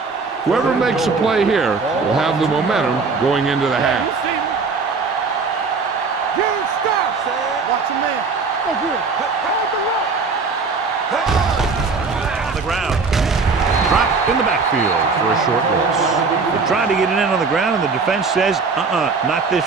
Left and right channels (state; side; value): quieter; left; 4.5 dB